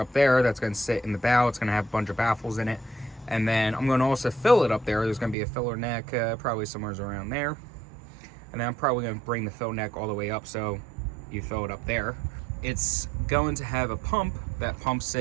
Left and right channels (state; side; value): drops out; left; at 5.4 s